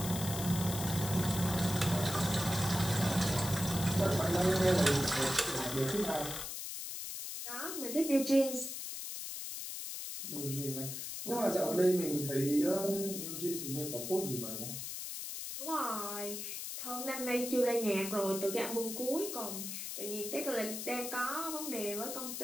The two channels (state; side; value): noise; left; hiss, 6 dB below the sound